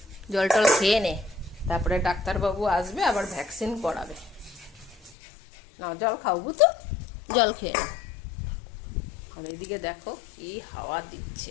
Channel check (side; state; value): right; drops out; at 5.1 s